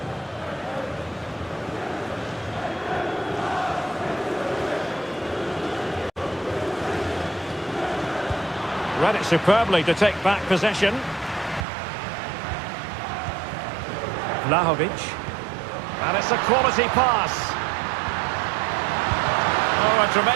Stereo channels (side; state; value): left; drops out; at 11.7 s